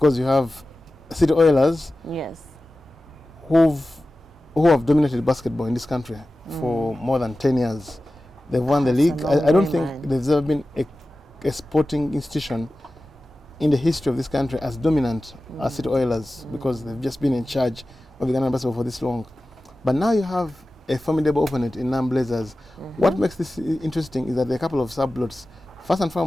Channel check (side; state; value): both; normal; correlation 0.95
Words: you have City Oilers, yes, who have dominated basketball in this country for more than 10 years. They've won the league. I don't think there's ever been a sporting institution in the history of this country as dominant as City Oilers, because they've just been in charge of the Ghana basketball for this long. But now you have a formidable opponent in Non-Blazers. What makes this interesting is that there are a couple of subplots. First and